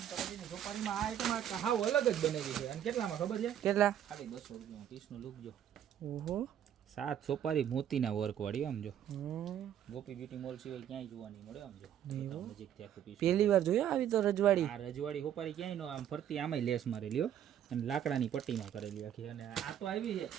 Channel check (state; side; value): quieter; left; 10.2 dB